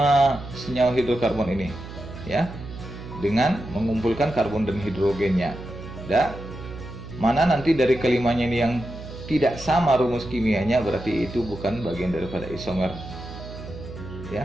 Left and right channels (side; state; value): right; noise; hum, 12 dB below the sound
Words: senyawa hidrokarbon ini ya, dengan mengumpulkan karbon dan hidrogennya. Dan mana nanti dari kelimanya ini yang tidak sama rumus kimianya, berarti itu bukan bagian daripada isomer